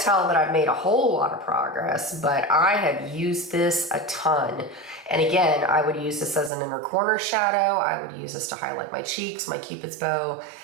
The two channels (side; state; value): left; drops out; at 6.5 s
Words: that I've made a whole lot of progress, but I have used this a ton. And again, I would use this as an inner corner shadow. I would use this to highlight my cheeks, my Cupid's bow,